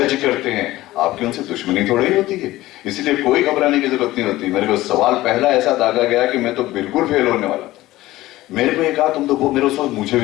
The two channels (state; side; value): quieter; right; 16.9 dB